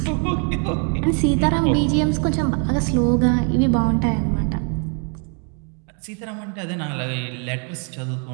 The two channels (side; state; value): left; quieter; 39.6 dB